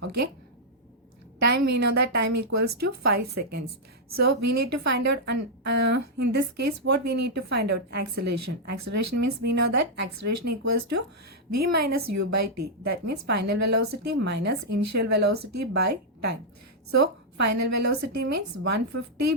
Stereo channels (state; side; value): normal; both; correlation -0.05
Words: Okay. Time, we know that time equals to 5 seconds. So we need to find out, in this case, what we need to find out? Acceleration. Acceleration means we know that acceleration equals to V minus U by T. That means final velocity minus initial velocity by time. So final velocity means 150